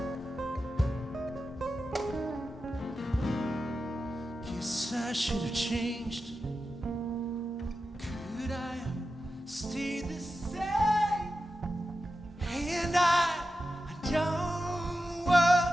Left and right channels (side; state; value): both; normal; correlation 0.91